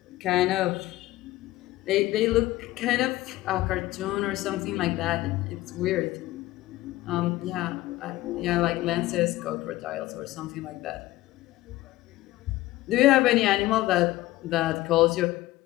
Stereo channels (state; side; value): quieter; right; 17.2 dB